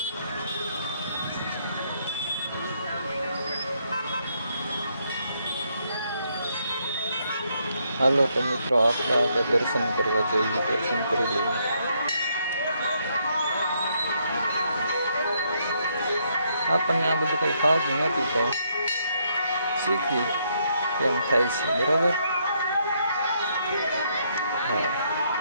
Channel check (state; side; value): inverted; both; correlation -0.74